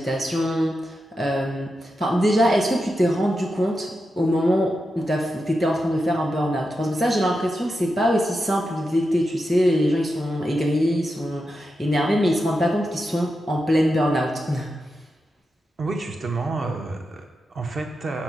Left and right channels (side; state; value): both; normal; correlation 0.89